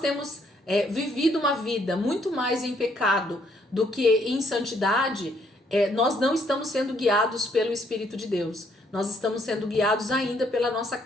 vivido uma vida muito mais em pecado do que em santidade, nós não estamos sendo guiados pelo Espírito de Deus. Nós estamos sendo guiados ainda pela nossa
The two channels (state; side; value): normal; both; correlation 0.69